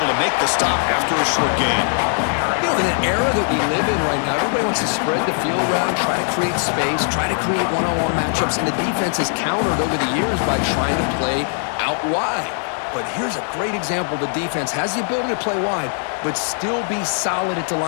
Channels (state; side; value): silent; right; 58 dB below the other